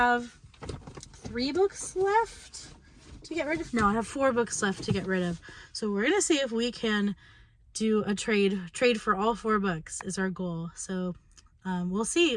3 books left to get rid of. No, I have 4 books left to get rid of. So we're gonna see if we can do a trade for all 4 books is our goal. So we'll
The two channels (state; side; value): identical; both; correlation 1.00